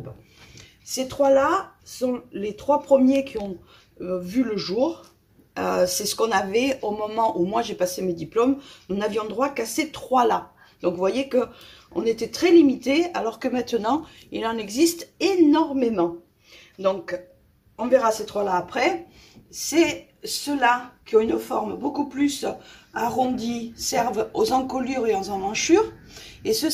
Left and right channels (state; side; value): identical; both; correlation 1.00